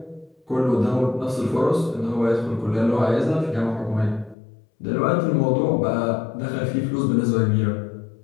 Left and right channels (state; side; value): drops out; right; at 4.4 s